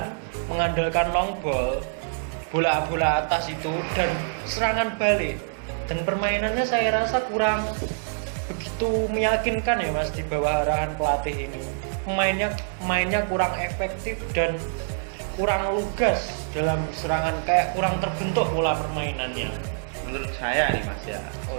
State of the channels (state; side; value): silent; left; 61 dB below the other